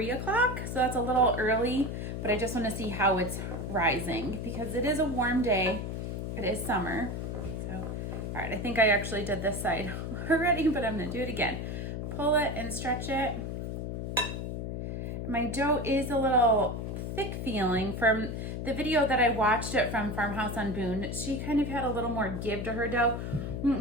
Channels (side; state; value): left; noise; hum, 4 dB below the sound